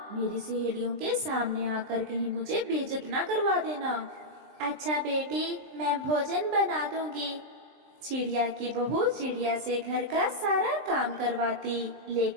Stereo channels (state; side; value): late; left; 23 ms